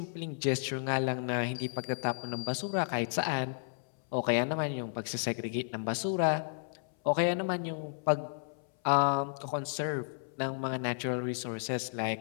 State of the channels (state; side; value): silent; right; 56 dB below the other